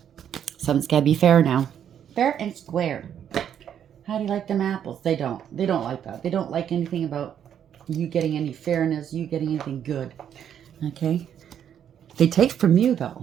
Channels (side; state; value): left; quieter; 9.2 dB